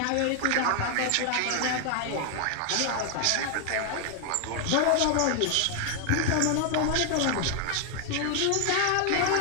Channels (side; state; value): both; different; correlation 0.00